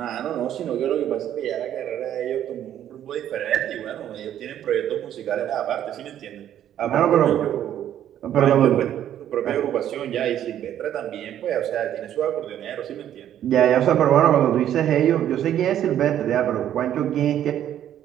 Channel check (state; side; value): quieter; left; 10.9 dB